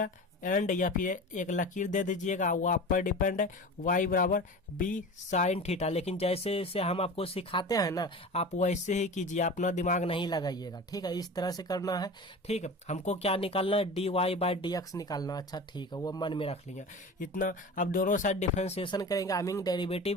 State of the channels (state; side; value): normal; both; correlation 0.33